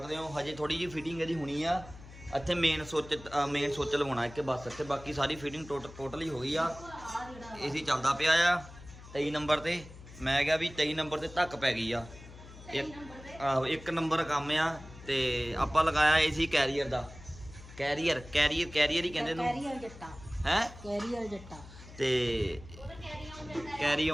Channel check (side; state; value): left; noise; hum, 17 dB below the sound